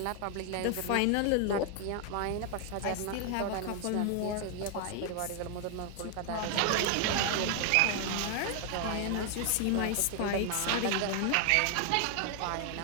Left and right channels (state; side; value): different; both; correlation 0.00